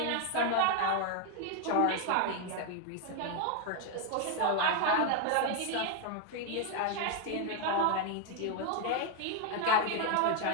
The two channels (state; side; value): different; both; correlation 0.01